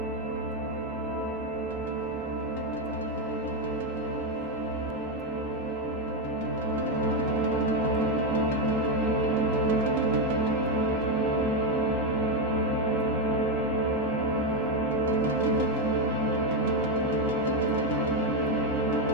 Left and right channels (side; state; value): both; normal; correlation 0.08